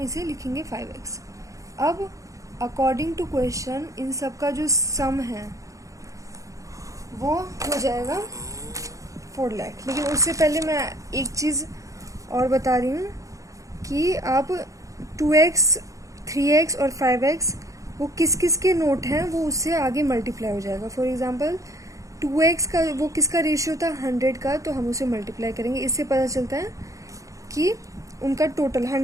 लिखेंगे 5x। अब अकॉर्डिंग टू क्वेश्चन इन सब का जो सम है वो हो जाएगा 4 लाख। लेकिन उससे पहले मैं एक चीज़ और बता रही हूँ कि आप 2x, 3x और 5x वो किस किस के नोट हैं वो उससे आगे मल्टीप्लाई हो जाएगा। फॉर एग्जांपल 2x का वो किसका रेशियो था, 100 का, तो हम उसे मल्टीप्लाई करेंगे। इससे पता चलता है कि उनका टोटल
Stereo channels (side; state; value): left; late; 0.16 ms